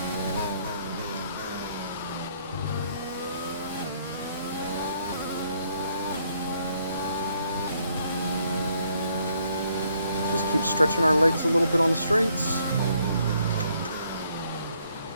Just keep stretching our legs a little bit on the straights.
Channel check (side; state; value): both; inverted; correlation -0.69